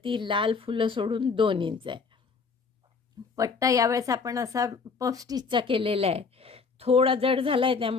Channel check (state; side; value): quieter; right; 5.0 dB